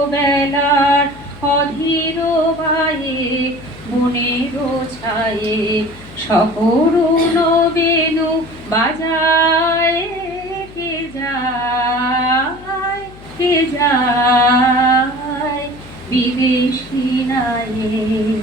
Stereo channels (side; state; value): left; noise; hum, 19 dB below the sound